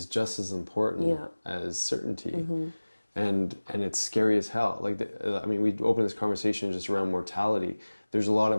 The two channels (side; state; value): both; inverted; correlation -1.00